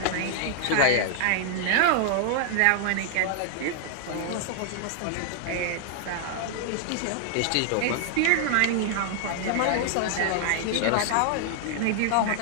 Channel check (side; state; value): both; different; correlation 0.00